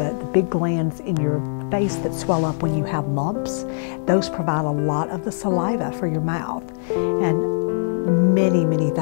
big glands in your face that swell up when you have lumps. Those provide a lot of the saliva for your mouth. And many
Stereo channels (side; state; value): right; silent; digital silence